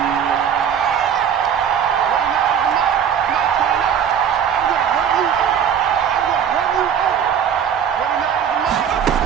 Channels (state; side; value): quieter; left; 8.3 dB